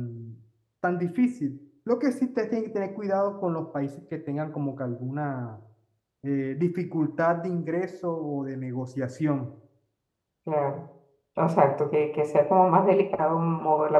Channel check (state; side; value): identical; both; correlation 1.00